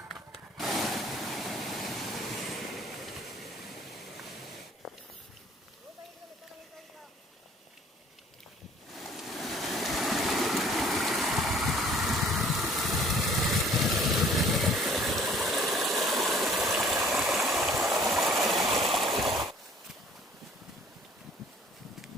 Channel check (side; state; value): both; normal; correlation 0.55